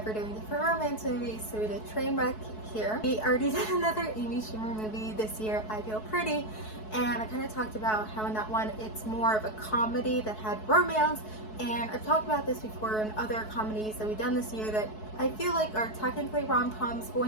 we're doing different romance movies, so we did Trainwreck here. We already did another Amy Schumer movie this year, I Feel Pretty, and I kind of talked about how in that one it's more of a comedy that had romance, and I've talked about this before in other comedies that we've done this year that I feel like are technically rom-coms, but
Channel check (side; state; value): right; late; 4.7 ms